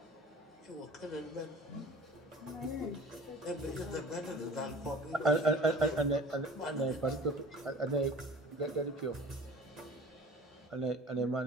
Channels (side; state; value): both; normal; correlation 0.43